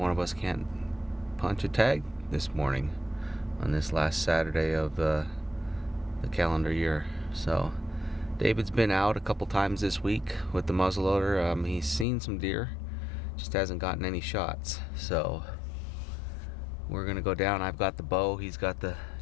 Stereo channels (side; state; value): right; drops out; at 12.1 s